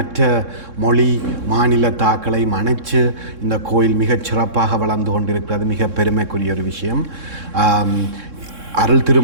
மொழி மாநிலத்தாக்களை அணைச்சு இந்த கோயில் மிகச் சிறப்பாக வளர்ந்து கொண்டிருக்கிறது மிக பெருமைக்குரிய ஒரு விஷயம். அருள்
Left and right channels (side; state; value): left; late; 3.6 ms